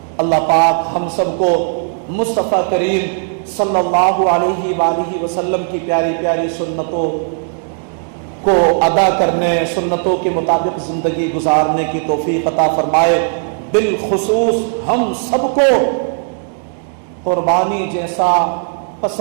اللہ پاک ہم سب کو مصطفیٰ کریم صلی اللہ علیہ وآلہ وسلم کی پیاری پیاری سنتوں کو ادا کرنے، سنتوں کے مطابق زندگی گزارنے کی توفیق عطا فرمائے۔ بالخصوص ہم سب کو قربانی جیسا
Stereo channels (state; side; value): silent; left; 69 dB below the other